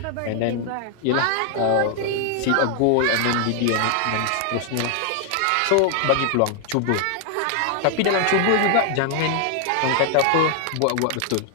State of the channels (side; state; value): both; different; correlation 0.00